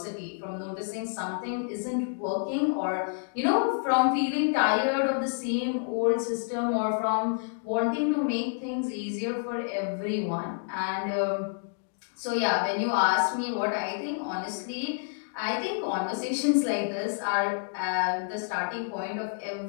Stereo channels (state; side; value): silent; right; digital silence